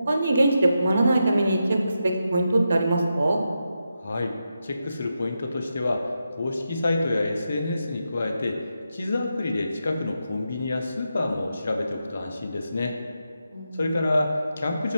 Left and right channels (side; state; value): both; inverted; correlation -0.87